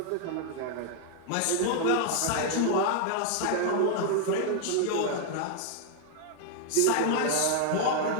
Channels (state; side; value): different; both; correlation 0.00